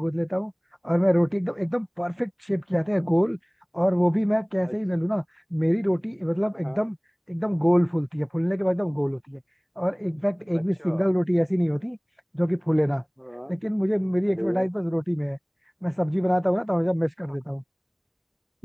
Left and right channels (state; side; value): identical; both; correlation 1.00